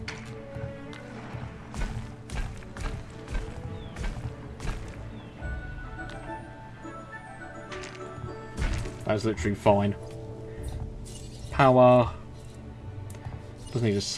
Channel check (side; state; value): both; identical; correlation 1.00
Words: That's literally fine. Power. Doesn't need a